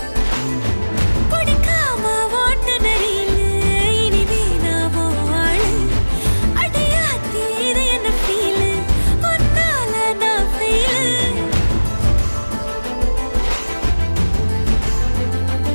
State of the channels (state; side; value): inverted; both; correlation -1.00